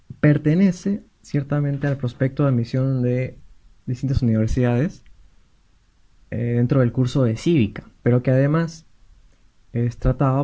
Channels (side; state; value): both; identical; correlation 1.00